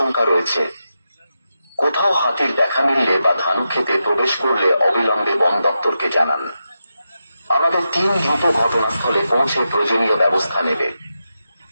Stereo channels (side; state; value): both; inverted; correlation -0.88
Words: রয়েছে। কোথাও হাতির দেখা মিললে বা ধান খেতে প্রবেশ করলে অবিলম্বে বন দপ্তরকে জানান। আমাদের টিম দ্রুত ঘটনাস্থলে পৌঁছে প্রয়োজনীয় ব্যবস্থা নেবে।